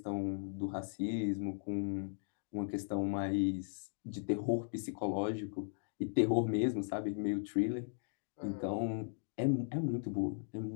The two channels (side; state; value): right; silent; digital silence